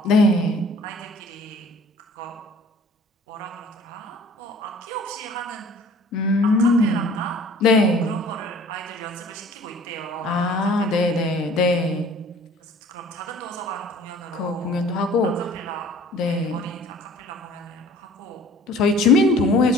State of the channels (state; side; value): normal; both; correlation 0.50